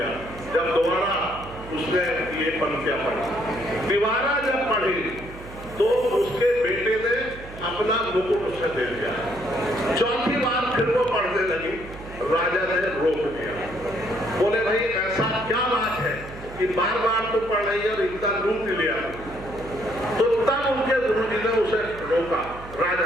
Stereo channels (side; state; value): right; noise; hum, 15 dB below the sound